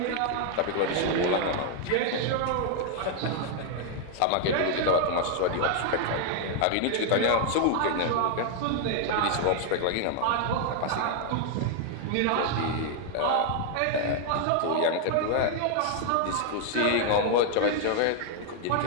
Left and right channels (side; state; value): both; different; correlation 0.00